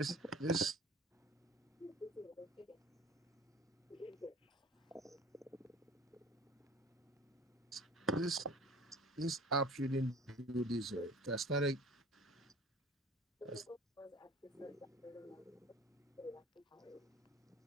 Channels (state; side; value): normal; both; correlation 0.45